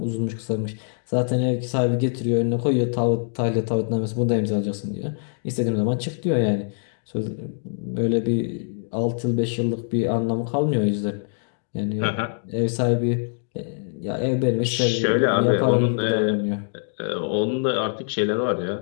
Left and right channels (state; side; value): silent; right; digital silence